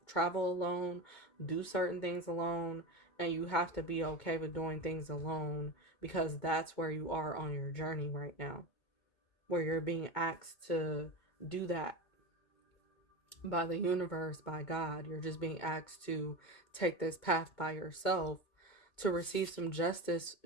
alone, do certain things alone, and you have to be okay with doing things alone because that's where you are on your journey right now, where you're being asked to do that by the universe, by God. You're just being asked to take this path by yourself to receive some justice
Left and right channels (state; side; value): late; right; 2.2 ms